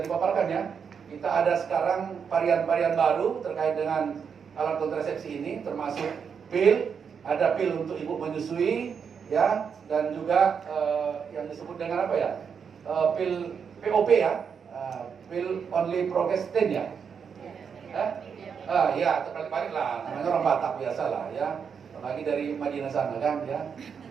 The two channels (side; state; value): left; quieter; 6.7 dB